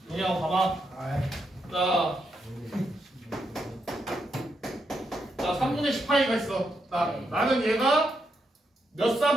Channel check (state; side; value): normal; both; correlation 0.82